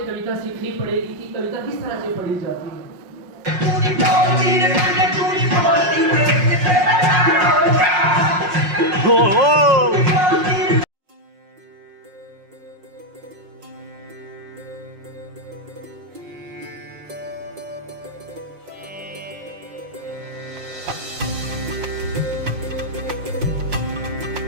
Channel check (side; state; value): left; late; 5.5 ms